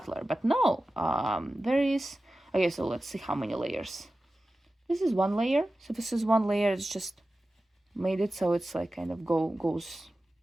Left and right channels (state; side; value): normal; both; correlation 0.95